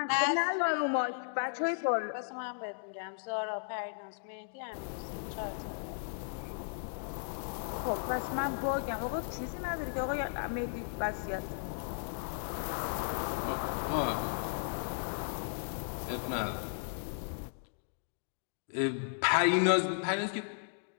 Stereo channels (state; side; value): silent; right; digital silence